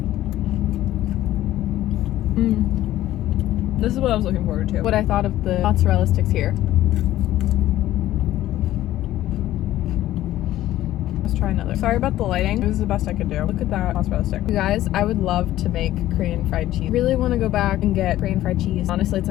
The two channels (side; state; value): right; quieter; 14.2 dB